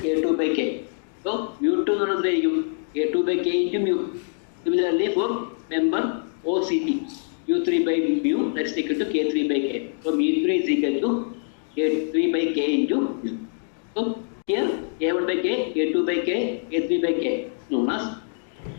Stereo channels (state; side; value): silent; right; digital silence